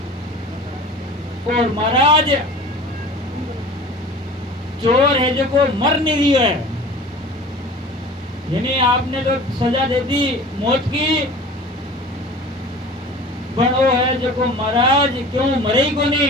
और महाराज चोर है जो को मर नहीं रही है, यानी आपने तो सजा दे दी मौत की, पर वो है जो को महाराज क्यों मरे ही को नहीं।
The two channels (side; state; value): both; normal; correlation 0.41